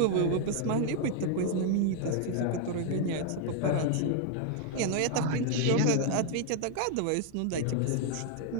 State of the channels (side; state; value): both; different; correlation 0.00